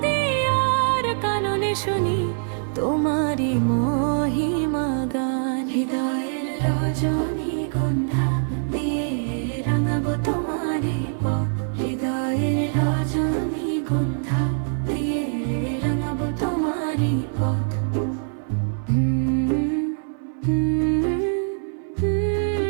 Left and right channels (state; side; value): silent; left; 57 dB below the other